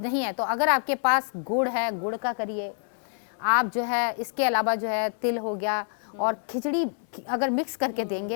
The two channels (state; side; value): silent; right; digital silence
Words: नहीं है तो अगर आपके पास गुड़ है, गुड़ का करिए आप जो है। इसके अलावा जो है तिल हो गया, और खिचड़ी अगर मिक्स करके